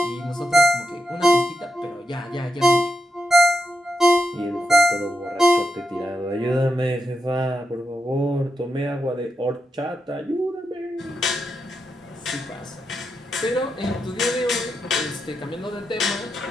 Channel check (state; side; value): normal; both; correlation 0.85